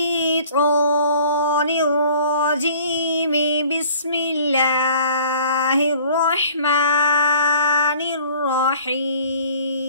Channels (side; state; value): both; inverted; correlation -0.51